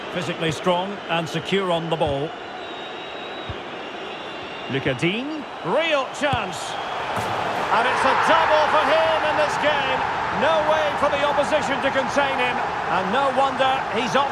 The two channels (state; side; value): identical; both; correlation 1.00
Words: Physically strong and secure on the ball. Digne, real chance. And it's a double for him in this game. No way for the opposition to contain him. And no wonder he's